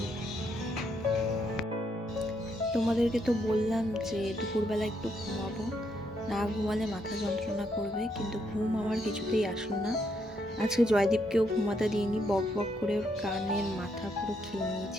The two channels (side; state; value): both; normal; correlation 0.76